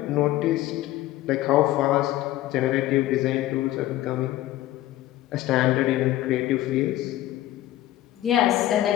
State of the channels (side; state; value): right; quieter; 14.9 dB